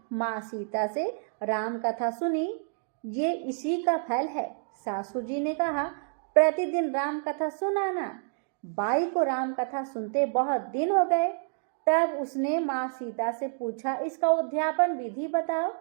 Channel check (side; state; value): left; silent; digital silence